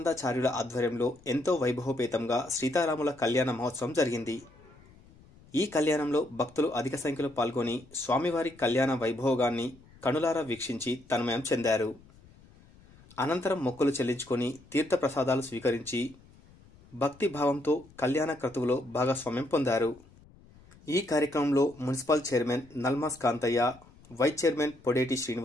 ఆధ్వర్యంలో ఎంతో వైభవపేతంగా సీతారాముల కళ్యాణ మహోత్సవం జరిగింది. ఈ కళ్యాణంలో భక్తులు అధిక సంఖ్యలో పాల్గొని స్వామివారి కళ్యాణ వైభోగాన్ని కనులారా వీక్షించి తన్మయం చెందారు. అనంతరం మొక్కులు చెల్లించుకొని తీర్థప్రసాదాలు స్వీకరించి భక్తి భావంతో కళ్యాణ క్రతువులో భాగస్వామ్యం పొందారు. ఈ కార్యక్రమంలో municipal chairman Nalmas Kantaiah, vice chairman Podeti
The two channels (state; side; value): noise; left; rumble, 25 dB below the sound